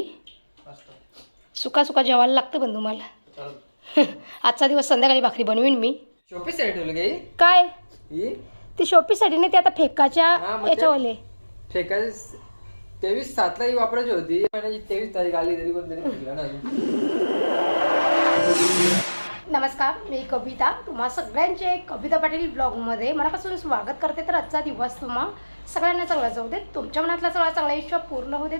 सुका सुका जेवायला लागतं पण तुम्हाला. आजचा दिवस संध्याकाळी भाकरी बनवीन मी. शोपीसाठी काय ती शोपीसाठी नाही, ते आता फेकाच्या याच्यावाले फेका 23/7 ही वापरायची होती, 23 तारीख आली तरी कोणतरी फेकला ना. नमस्कार, मी कविता. तुम्हा सगळ्यांचे कविता पाटील ब्लॉगमध्ये मनापासून स्वागत करते. तर आजचा दिवस तुम्हा सगळ्यांना चांगला जाऊ दे, तुमच्या मनातला सगळा चांगला इच्छा पूर्ण होते,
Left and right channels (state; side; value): inverted; both; correlation -1.00